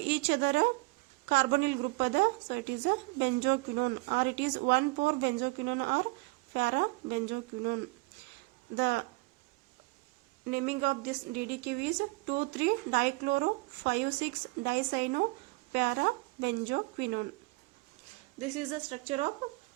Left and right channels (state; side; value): quieter; left; 25.1 dB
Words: each other carbonyl group ada, so it is benzoquinone, or it is 1,4-benzoquinone or para-benzoquinone. The naming of this DDQ is 2,3-dichloro-5,6-dicyano-para-benzoquinone. This is the structure of